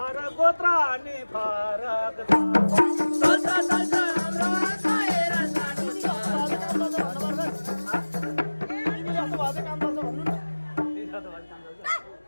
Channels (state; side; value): inverted; both; correlation -1.00